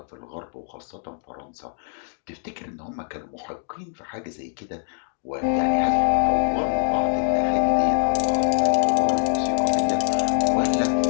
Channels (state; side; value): silent; right; digital silence